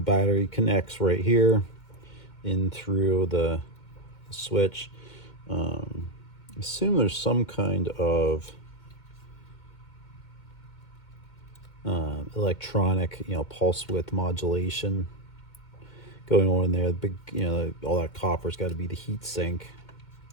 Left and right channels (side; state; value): right; late; 2.2 ms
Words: connects right here in through the switch. Assume there's some kind of electronic, pulse width modulation going on in there. The big, all that copper's got to be the heat sink,